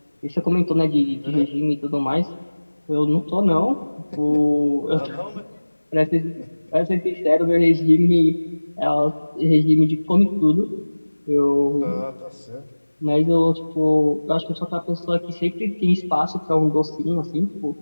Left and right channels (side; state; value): both; inverted; correlation -1.00